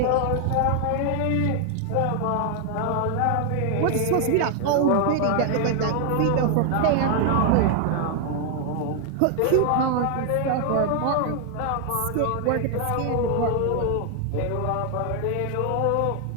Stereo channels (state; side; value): different; both; correlation 0.00